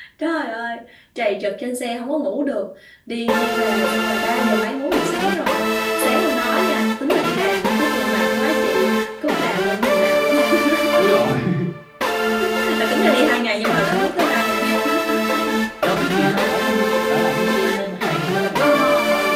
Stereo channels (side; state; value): both; identical; correlation 1.00